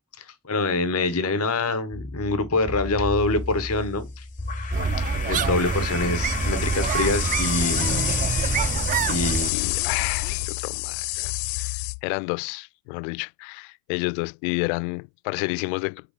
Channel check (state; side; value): drops out; right; at 9.5 s